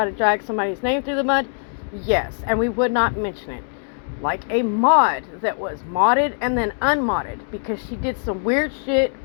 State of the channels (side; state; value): right; silent; digital silence